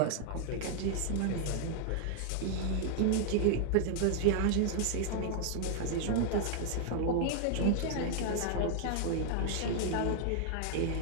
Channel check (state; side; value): different; both; correlation 0.00